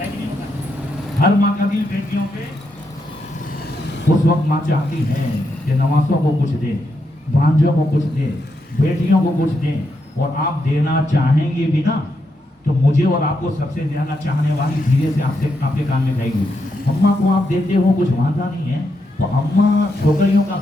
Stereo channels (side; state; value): both; normal; correlation 0.82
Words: کہ نہیں ہوتا؟ ہر ماں کا دل بیٹیوں پہ. اس وقت ماں چاہتی ہے کہ نواسوں کو کچھ دے, بھانجوں کو کچھ دے, بیٹیوں کو کچھ دے, اور آپ دینا چاہیں گے بھی نا تو مجھے اور آپ کو سب سے زیادہ چاہنے والی دھیرے سے آپ کے کان میں کہے گی اماں کو آپ دیتے ہو کچھ وعدہ نہیں ہے تو اماں چھوکریوں کا